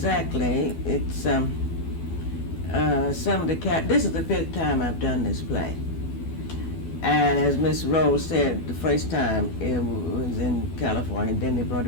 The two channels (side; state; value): right; late; 12 ms